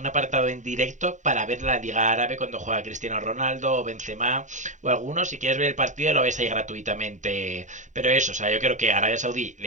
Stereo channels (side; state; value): left; late; 0.36 ms